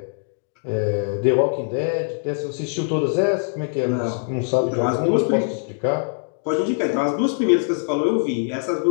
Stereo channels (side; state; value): right; silent; 61 dB below the other